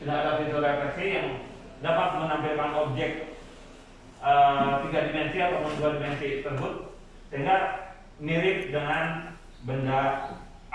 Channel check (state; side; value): identical; both; correlation 1.00